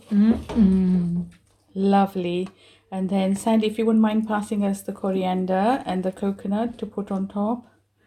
Lovely. And then, Sandy, if you wouldn't mind passing us the coriander and the coconut to put on top.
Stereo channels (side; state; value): both; identical; correlation 1.00